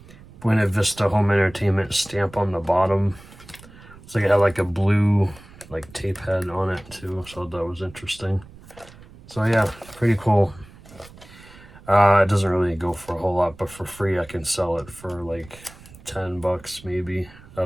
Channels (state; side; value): noise; right; rumble, 21 dB below the sound